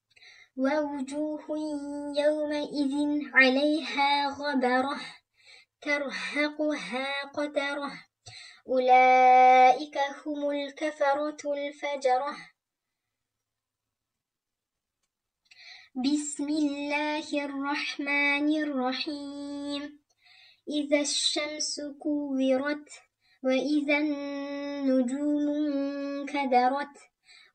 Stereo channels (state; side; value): identical; both; correlation 1.00